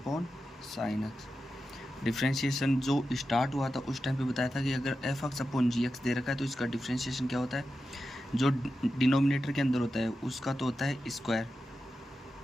sine x. Differentiation जो स्टार्ट हुआ था उस टाइम पे बताया था कि अगर F X upon G x दे रखा है तो इसका डिफ्रेंशिएशन क्या होता है? जो डिनोमिनेटर के अंदर होता है उसका तो होता है स्क्वायर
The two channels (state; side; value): normal; both; correlation 0.90